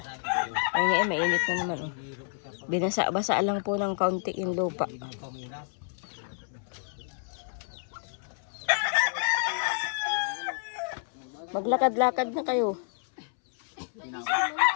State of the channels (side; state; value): right; silent; 58 dB below the other